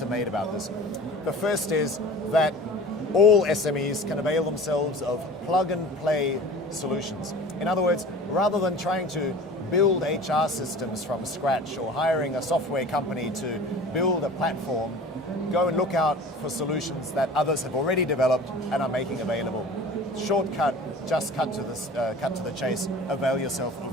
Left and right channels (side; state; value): both; normal; correlation 0.40